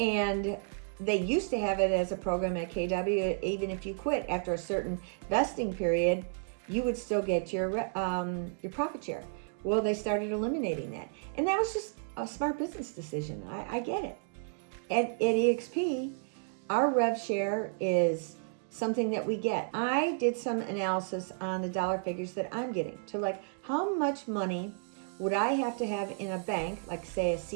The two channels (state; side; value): silent; left; digital silence